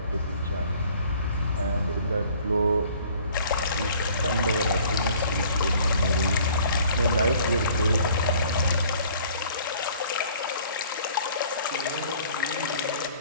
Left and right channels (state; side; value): inverted; both; correlation -0.54